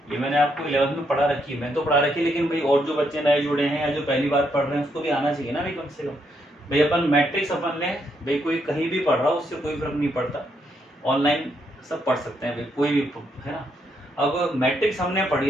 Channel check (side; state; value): both; normal; correlation 0.76